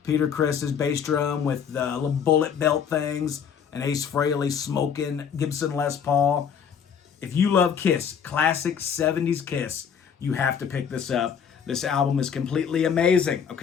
Peter Criss's bass drum with the little bullet belt things, and Acefrehley smoking Gibson Les Paul. If you love Kiss, classic 70s Kiss, you have to pick this up. This album is completely amazing,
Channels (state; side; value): quieter; right; 7.4 dB